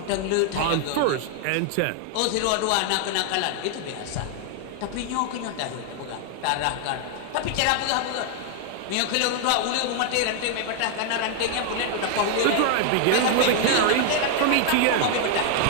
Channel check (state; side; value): different; both; correlation 0.00